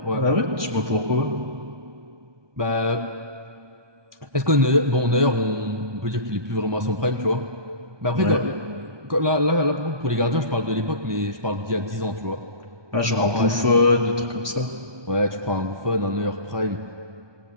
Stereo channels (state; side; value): late; left; 1.2 ms